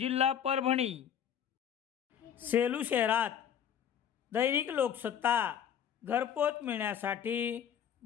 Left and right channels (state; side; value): quieter; right; 9.0 dB